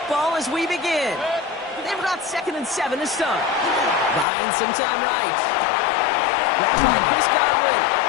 as we begin. They've got 2nd and 7 to start. Buying some time right. Grabbed by Chris Godwin.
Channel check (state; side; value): drops out; right; at 4.2 s